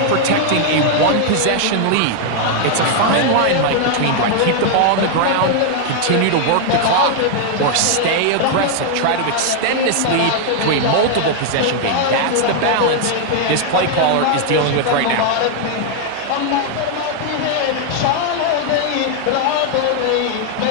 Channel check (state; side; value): different; both; correlation 0.00